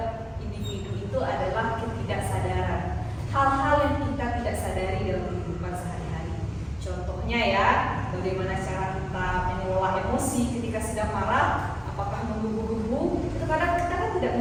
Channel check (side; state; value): both; identical; correlation 1.00